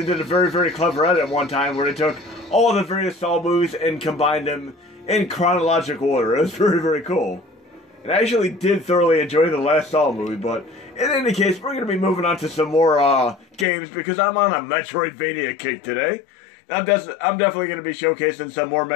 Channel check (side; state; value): right; drops out; at 13.7 s